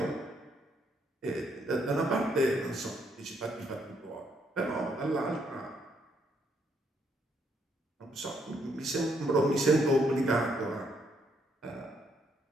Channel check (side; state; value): both; normal; correlation 0.73